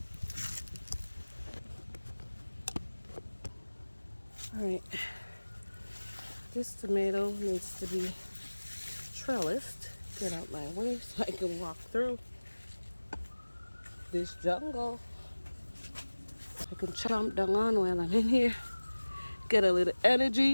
Alright. This tomato needs to be trellised. Get out my way so I can walk through this jungle. I can chomp down on while I'm in here. Get a little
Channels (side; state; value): both; inverted; correlation -1.00